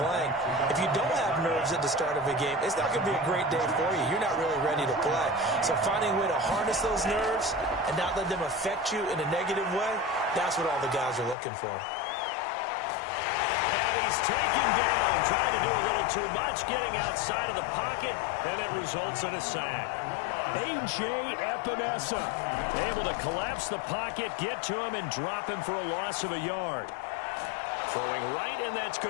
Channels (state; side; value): drops out; right; at 11.4 s